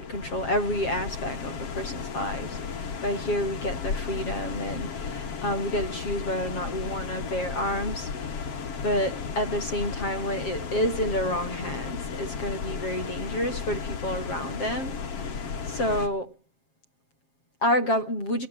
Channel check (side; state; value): right; late; 7.4 ms